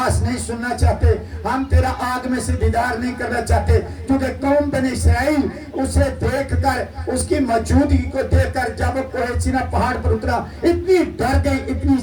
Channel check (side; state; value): both; identical; correlation 1.00